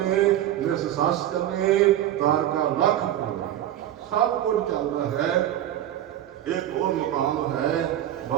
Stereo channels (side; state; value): left; quieter; 12.2 dB